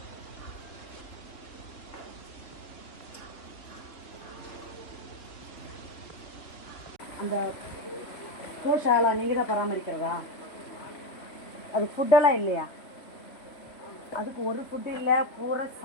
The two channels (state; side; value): late; right; 3.3 ms